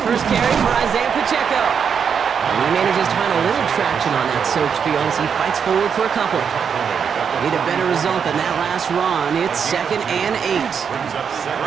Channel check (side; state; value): left; quieter; 6.9 dB